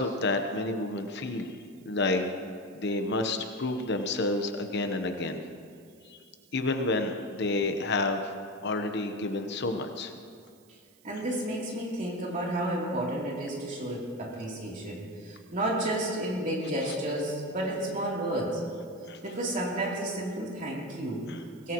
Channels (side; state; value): right; noise; hiss, 29 dB below the sound